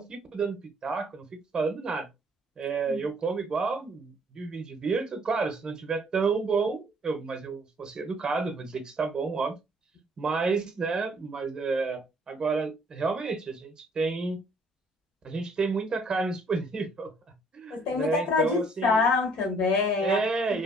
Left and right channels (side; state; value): both; normal; correlation 0.62